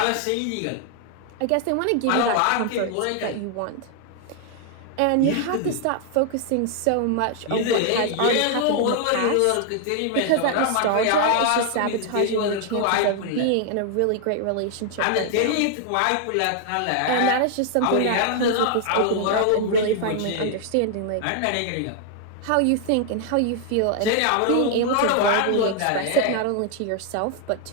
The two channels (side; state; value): both; different; correlation 0.00